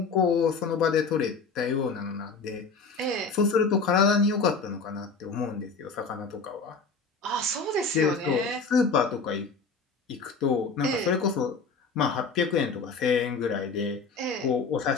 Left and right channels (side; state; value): right; quieter; 4.6 dB